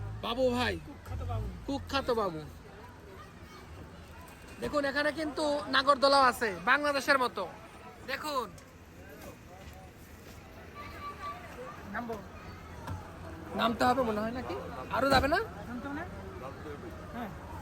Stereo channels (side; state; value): both; identical; correlation 1.00